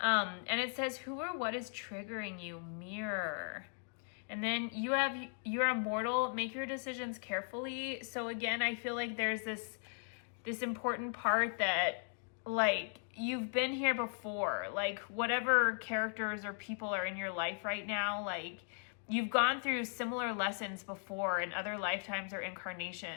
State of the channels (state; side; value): silent; right; 53 dB below the other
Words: it says, who or what is triggering you? Mirror. And then you're immortal, make your decisions carefully. So again, I feel like there's this important part that like you've been here before, like whatever characters or people are in your life right now, like you've gone through similar lessons before in other lifetimes or